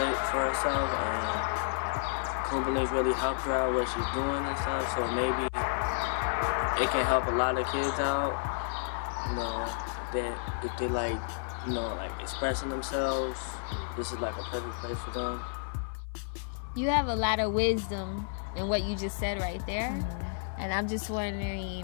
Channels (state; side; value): silent; right; 57 dB below the other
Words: for herself, and Kumbalinks really helped her out what she's doing and stuff. So maybe it can help a lot of kids out. You know, that if they like, you know, like expressing themselves, this is like a perfect place for them. You have a lot of wisdom in what you just said right there. And I'm just